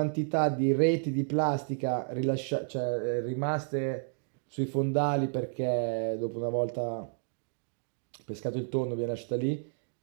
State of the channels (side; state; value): left; silent; digital silence